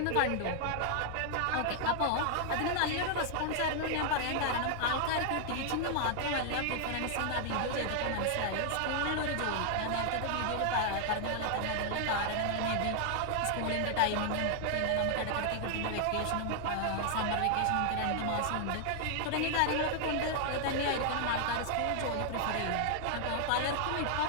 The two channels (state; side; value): different; both; correlation 0.00